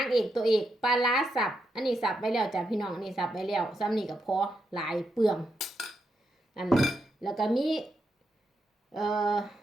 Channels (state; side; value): normal; both; correlation 0.83